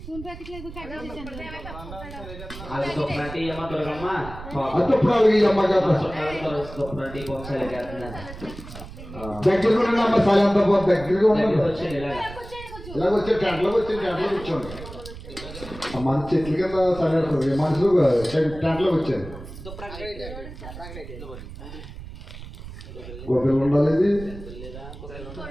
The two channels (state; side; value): noise; right; rumble, 13 dB below the sound